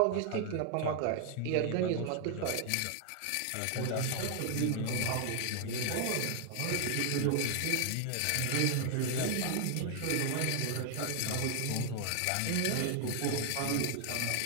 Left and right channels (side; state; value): both; different; correlation 0.00